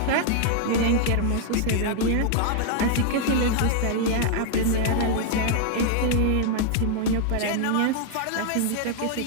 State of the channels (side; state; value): both; different; correlation 0.00